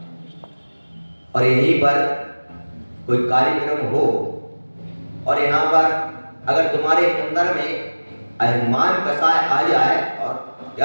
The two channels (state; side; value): inverted; both; correlation -1.00